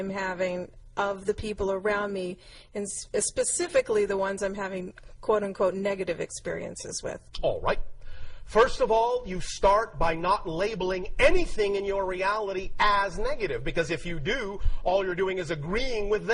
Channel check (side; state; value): both; identical; correlation 1.00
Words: having of the people around me, and specifically the ones I'm having quote-unquote negative experiences with? All right. First of all, you start by not labeling anything in your reality as negative, because if you do, all you're doing is agreeing with